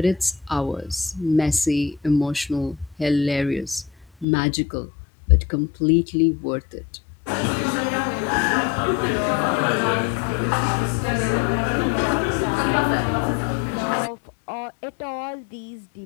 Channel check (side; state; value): right; drops out; at 4.2 s